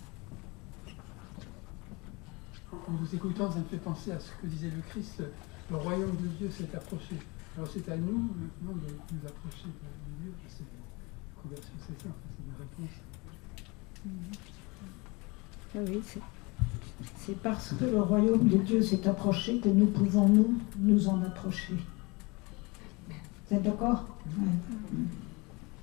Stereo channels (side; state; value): right; quieter; 26.5 dB